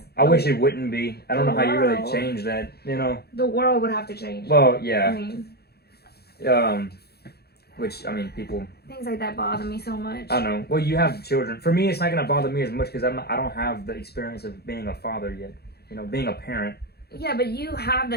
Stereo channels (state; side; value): late; right; 0.46 ms